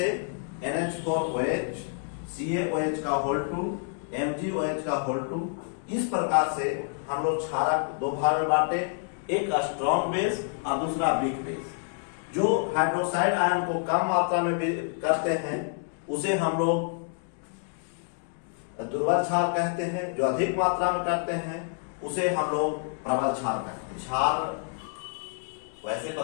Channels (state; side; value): silent; right; 59 dB below the other